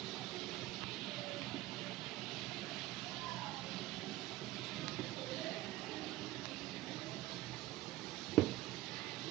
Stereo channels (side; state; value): left; quieter; 16.7 dB